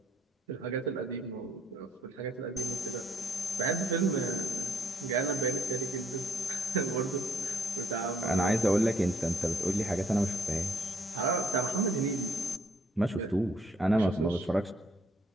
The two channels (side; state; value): both; normal; correlation 0.66